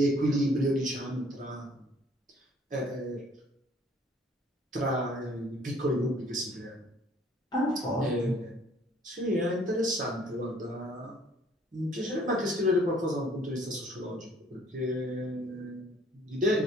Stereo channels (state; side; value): normal; both; correlation 0.58